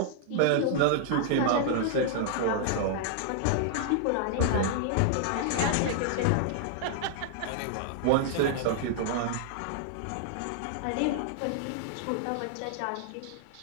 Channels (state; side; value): different; both; correlation -0.01